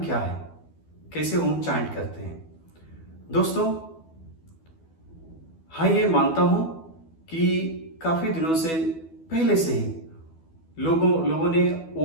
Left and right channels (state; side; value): late; right; 12 ms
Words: है, कैसे ओम चांट करते हैं। दोस्तों, हाँ, ये मानता हूँ कि काफ़ी दिनों से पहले से ही लोगों ने